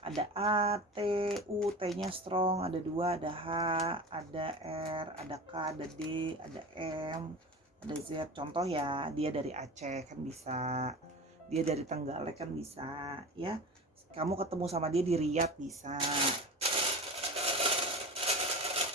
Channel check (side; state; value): both; normal; correlation 0.33